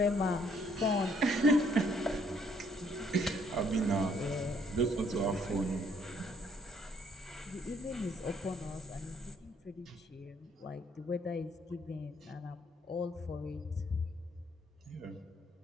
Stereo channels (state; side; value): normal; both; correlation 0.66